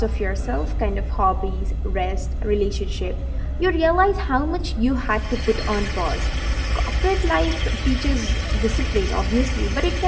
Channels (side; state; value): both; identical; correlation 1.00